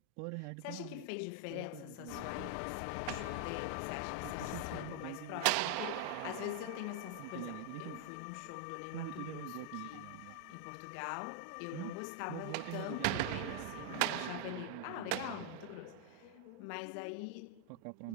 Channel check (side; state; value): both; different; correlation 0.00